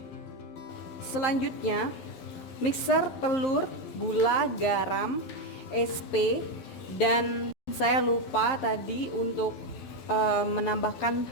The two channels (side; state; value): right; late; 12 ms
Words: Selanjutnya mixer telur, gula, garam, SP, dan saya lupa tadi untuk menambahkan